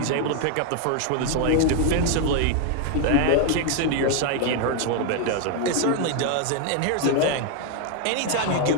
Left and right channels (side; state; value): both; different; correlation 0.01